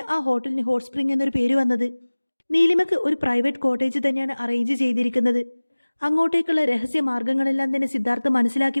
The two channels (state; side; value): inverted; both; correlation -1.00